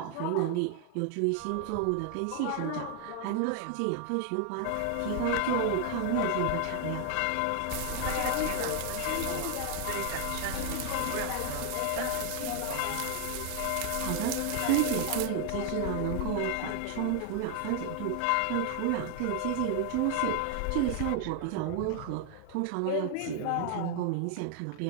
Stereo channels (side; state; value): both; different; correlation 0.00